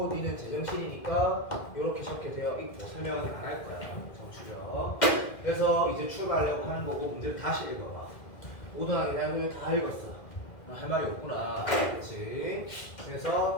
니는 제정신이니까 이렇게 적게 되어 있고 설명은 안 할 거야. 정추력. 그래서 이제 출발하려고 하는 거고 문제를 다시 읽어봐. 모든하게 대한 다 읽었어. 할 말이 없구나. 그렇지?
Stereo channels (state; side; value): late; right; 2.0 ms